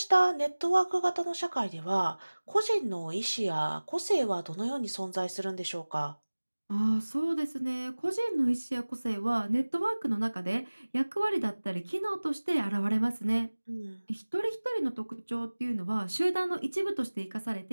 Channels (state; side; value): inverted; both; correlation -1.00